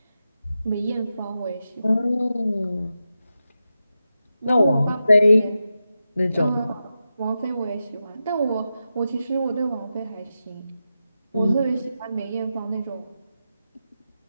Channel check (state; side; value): inverted; both; correlation -0.90